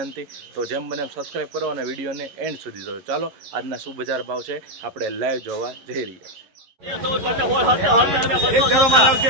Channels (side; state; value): left; late; 11 ms